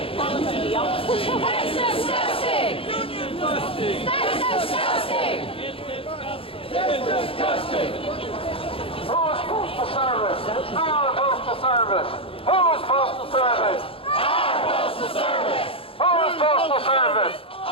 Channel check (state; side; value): late; right; 0.27 ms